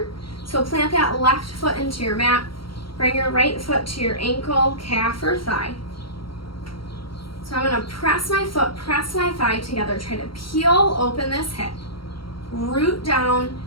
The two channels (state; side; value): late; right; 0.73 ms